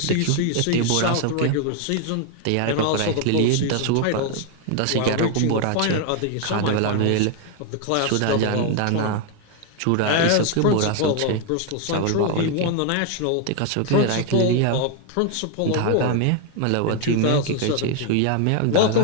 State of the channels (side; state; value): both; different; correlation 0.01